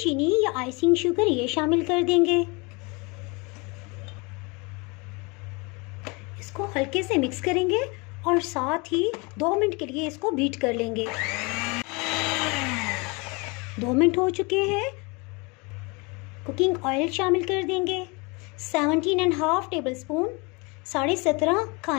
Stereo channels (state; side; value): quieter; right; 28.5 dB